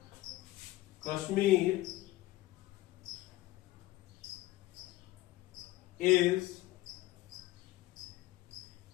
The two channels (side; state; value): right; quieter; 17.5 dB